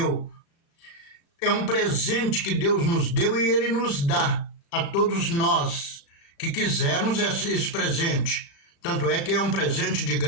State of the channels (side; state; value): right; late; 35 ms